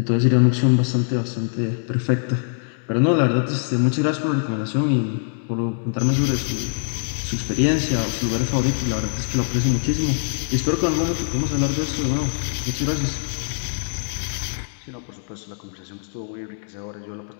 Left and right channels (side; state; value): right; silent; digital silence